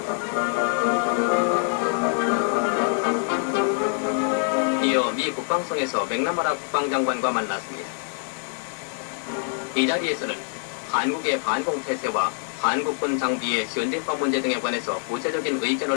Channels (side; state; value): right; silent; 62 dB below the other